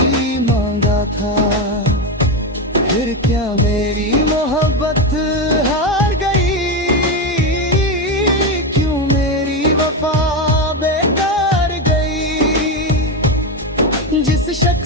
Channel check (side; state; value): both; normal; correlation 0.12